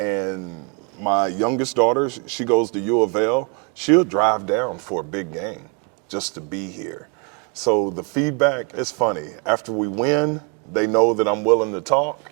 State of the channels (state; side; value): quieter; left; 35.2 dB